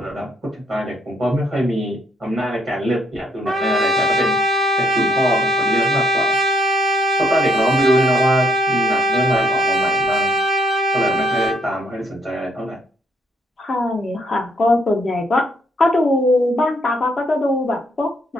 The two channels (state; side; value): normal; both; correlation 0.71